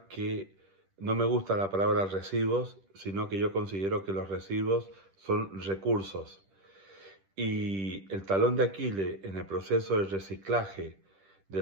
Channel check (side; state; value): left; late; 10 ms